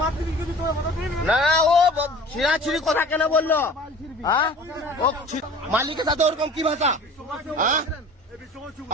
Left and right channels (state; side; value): normal; both; correlation 0.44